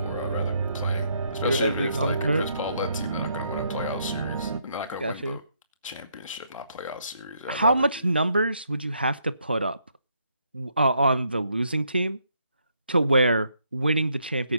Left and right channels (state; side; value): inverted; both; correlation -0.73